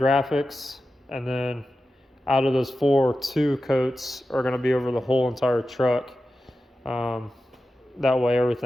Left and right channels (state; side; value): normal; both; correlation 0.92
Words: and then out of those 4, 2 coats are going to be over the whole entire truck. That way